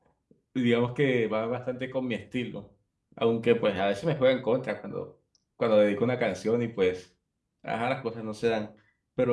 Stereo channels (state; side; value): identical; both; correlation 1.00